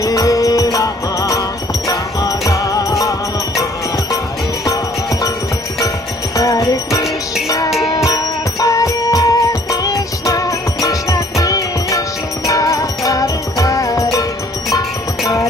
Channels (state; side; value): normal; both; correlation 0.58